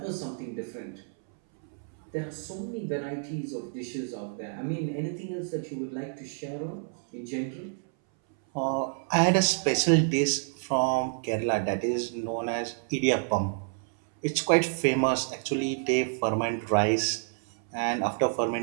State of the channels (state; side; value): silent; left; 59 dB below the other